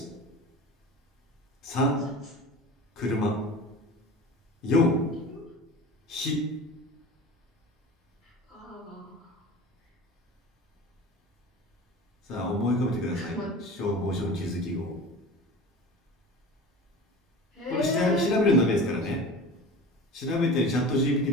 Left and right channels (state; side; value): normal; both; correlation 0.35